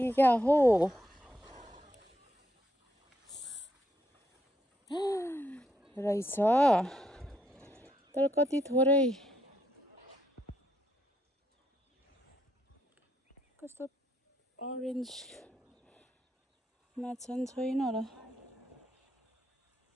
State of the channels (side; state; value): both; normal; correlation 0.78